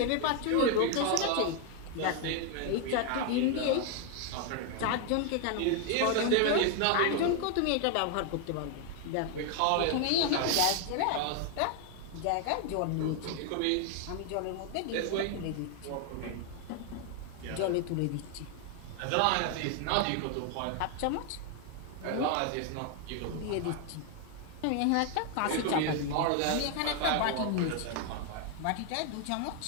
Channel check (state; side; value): different; both; correlation 0.01